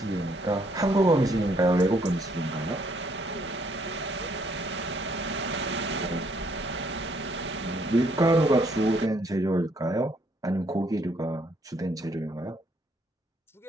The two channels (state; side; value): normal; both; correlation 0.69